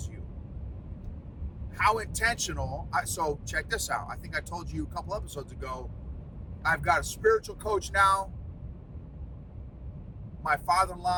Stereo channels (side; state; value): both; identical; correlation 1.00